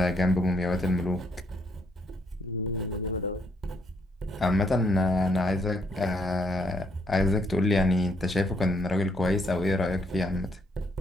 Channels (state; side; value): normal; both; correlation 0.72